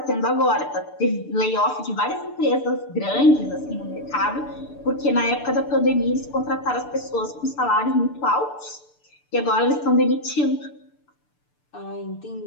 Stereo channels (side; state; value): right; late; 6.8 ms